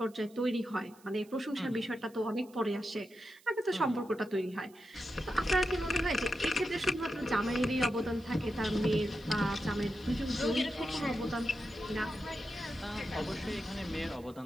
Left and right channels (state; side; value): noise; right; hiss, 27 dB below the sound